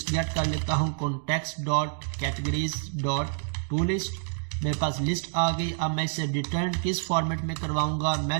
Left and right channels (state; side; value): silent; left; digital silence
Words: गेट कर लेता हूं context dot categories dot to list. मेरे पास लिस्ट आ गई। अब मैं इसे रिटर्न किस फॉर्मेट में करवाऊंगा? मैं